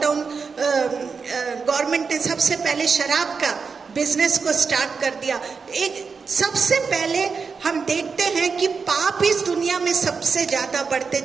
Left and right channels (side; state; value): left; quieter; 5.3 dB